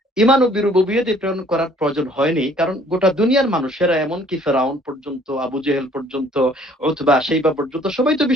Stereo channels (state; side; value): normal; both; correlation 0.58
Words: ঈমান ও বিরুবুবিয়্যাতে প্রেরণ করার প্রয়োজন হয়নি, কারণ গোটা দুনিয়ার মানুষেরা, এমনকি ফেরাউন পর্যন্ত, আবু জেহেল পর্যন্ত, উতবা, শাইবা পর্যন্ত সবাই তো